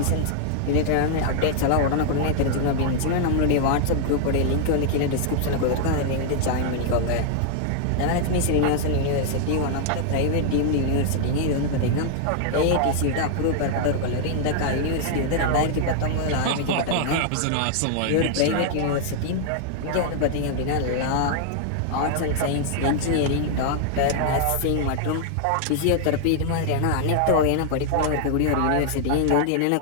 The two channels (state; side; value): different; both; correlation -0.01